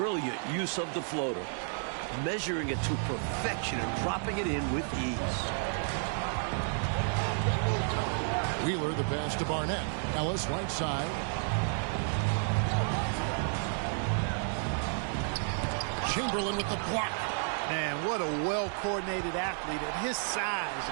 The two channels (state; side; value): silent; left; 57 dB below the other